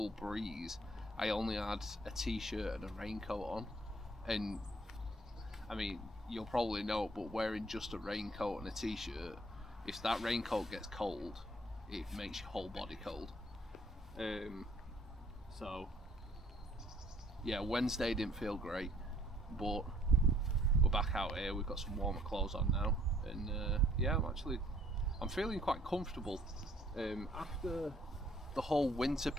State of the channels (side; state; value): both; normal; correlation 0.62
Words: breeze, I only had a t-shirt and a raincoat on. And I mean, you'll probably know, but wearing just a raincoat and a t-shirt, if that raincoat gets cold, it makes your whole body cold. So yeah, Wednesday didn't feel great, but we're back out here. We've got some warmer clothes on now, and yeah, I'm feeling quite comfortable. After the whole winter